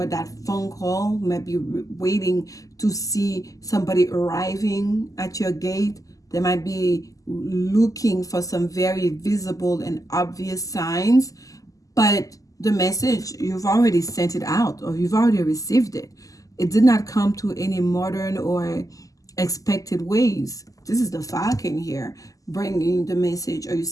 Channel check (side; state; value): right; late; 0.17 ms